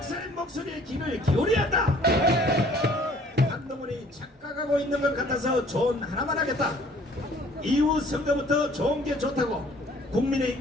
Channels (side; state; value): both; normal; correlation 0.56